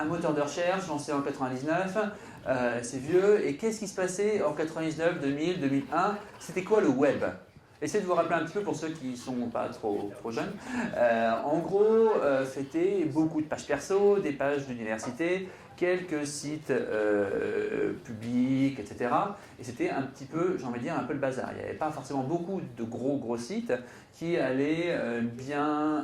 moteur de recherche lancé en 99, c'est vieux. Et qu'est-ce qui se passait en 99, 2000, 2001? C'était quoi le web? Essayez de vous rappeler un petit peu pour ceux qui ne sont pas trop jeunes. En gros, c'était beaucoup de pages perso, des pages d'université, quelques sites publics, etc. Et c'était un petit peu, j'ai envie de dire, un peu le bazar. Il n'y avait pas forcément beaucoup de gros sites qui allaient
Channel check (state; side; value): identical; both; correlation 1.00